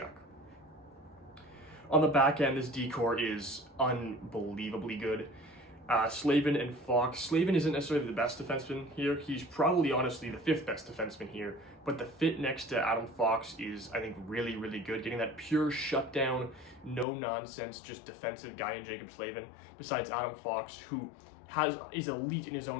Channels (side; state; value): right; drops out; at 17.1 s